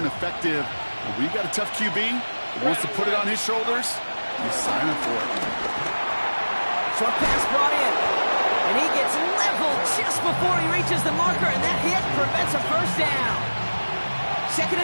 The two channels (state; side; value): inverted; both; correlation -1.00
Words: effective. When we've got a tough QB that wants to put it on his shoulders, you sign up for it. Short pass brought in. And he gets leveled just before he reaches the marker, and that hit prevents a first down.